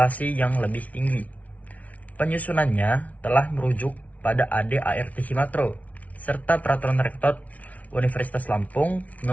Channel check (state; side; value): late; right; 0.069 ms